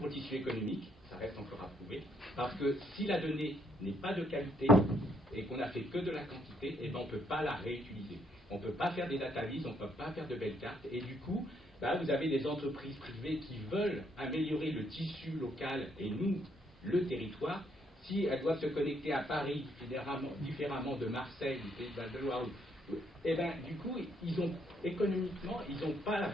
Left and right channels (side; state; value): both; normal; correlation 0.71